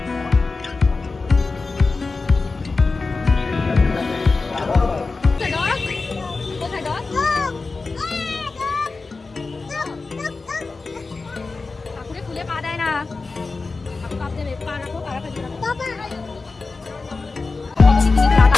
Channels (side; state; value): right; quieter; 4.0 dB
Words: ঠাকুরে খুলে পা দেয় না, পা রাখো, পা রাখো।